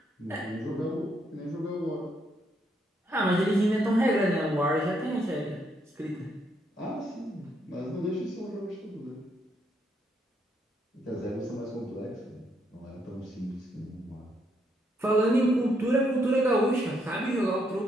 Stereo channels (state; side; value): normal; both; correlation 0.75